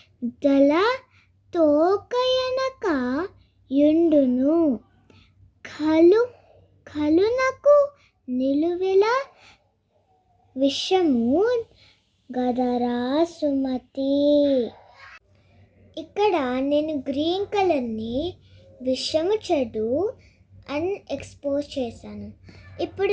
దళ తోకయనక యుండును కలునకు నిలువెల విషము గదరా సుమతి. ఇక్కడ నేను గ్రీన్ కలర్ని విషము చెడు అని ఎక్స్పోజ్ చేశాను.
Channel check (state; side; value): identical; both; correlation 1.00